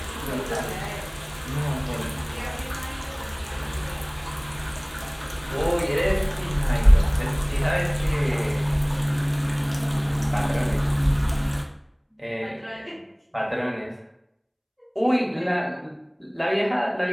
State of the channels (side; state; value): both; identical; correlation 1.00